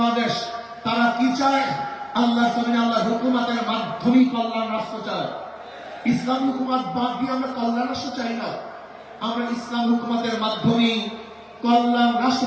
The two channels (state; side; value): identical; both; correlation 1.00